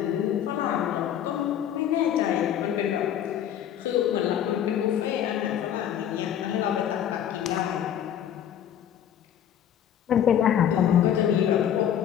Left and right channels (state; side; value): quieter; right; 9.9 dB